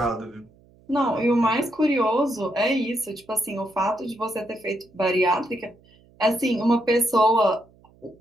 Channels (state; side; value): noise; right; hum, 29 dB below the sound